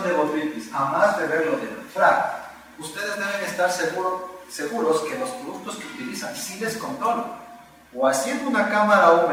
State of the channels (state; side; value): identical; both; correlation 1.00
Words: de botritis, a más de verlo del FRAC, ustedes deben estar seguros que los productos que utilizan sí les controlan. O haciendo una cámara